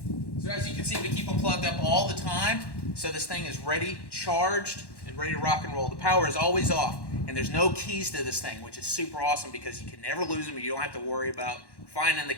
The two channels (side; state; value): right; late; 1.1 ms